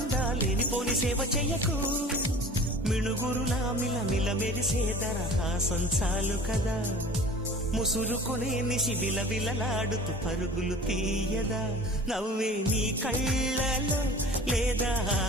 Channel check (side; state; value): both; normal; correlation 0.42